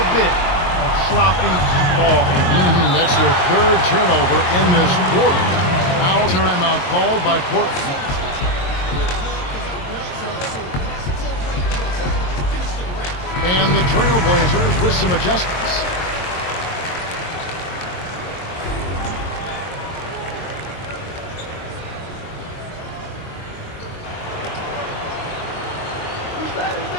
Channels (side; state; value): right; late; 22 ms